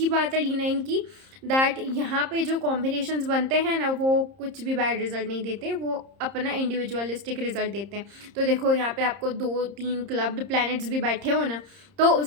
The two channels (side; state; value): left; late; 30 ms